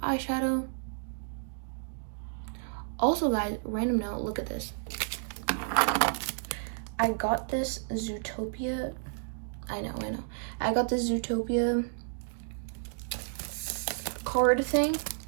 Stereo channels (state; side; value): silent; left; digital silence